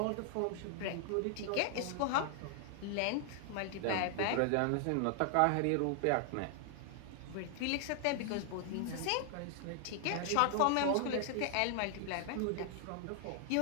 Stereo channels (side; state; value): both; different; correlation 0.00